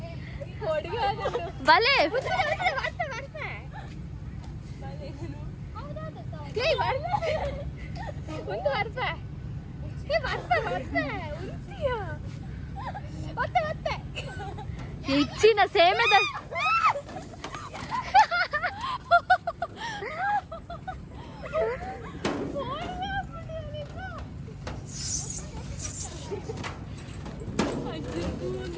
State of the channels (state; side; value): identical; both; correlation 1.00